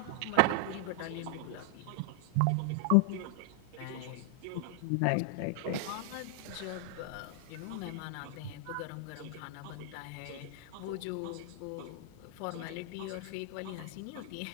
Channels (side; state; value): both; different; correlation 0.00